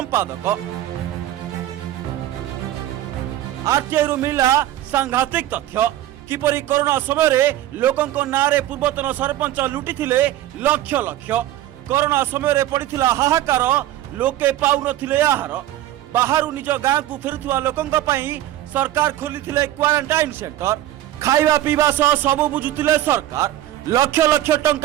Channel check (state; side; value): quieter; left; 13.6 dB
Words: आरटीआई रु मिला सांघातिक तथ्य किपरि कोरोना समय रे लोकंक नारे पूर्वतन सरपंच लुटिथिले लक्ष लक्ष। कोरोना समय रे पड़िथिला हाहाकार, लोके पाउ नथिले आहार। बाहरु निज गाँ को फेरुथुवा लोकंक पई सरकार खोलिथिले क्वारंटाइन सेंटर। खाइबा पीवा सह सबु बुझुथिले सरकार। लक्ष लक्ष